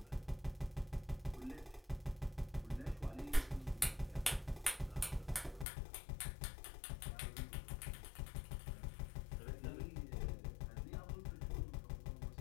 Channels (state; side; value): drops out; right; at 5.7 s